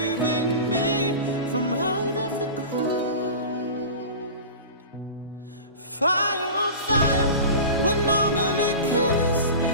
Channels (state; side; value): inverted; both; correlation -0.32